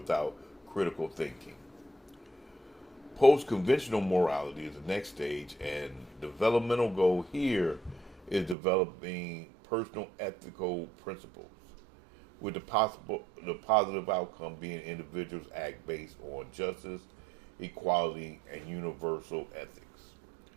critical thinking. Post-conventional morality is the next stage, and developmental goal here is developing personal ethical principles, with the positive outcome being individuals act based on justice, equality, and universal ethics.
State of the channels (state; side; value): drops out; left; at 8.6 s